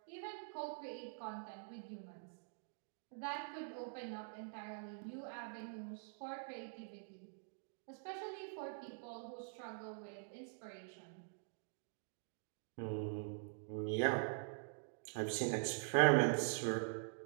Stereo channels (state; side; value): silent; left; digital silence